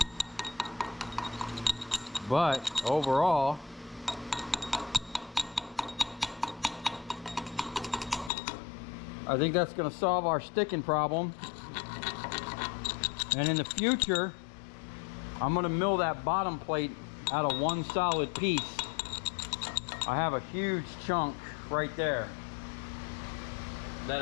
But overall, I think that's going to solve our sticking problem. And in the future, I'm going to mill that bottom plate out of one solid piece. I have a huge chunk right there that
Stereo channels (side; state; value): right; drops out; at 8.3 s